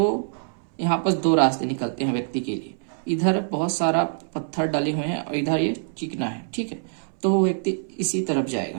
यहाँ पर 2 रास्ते निकलते हैं व्यक्ति के लिए, इधर बहुत सारा पत्थर डले हुए हैं और इधर ये चिकना है, ठीक है। तो वो व्यक्ति इसी तरफ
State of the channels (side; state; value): left; silent; 62 dB below the other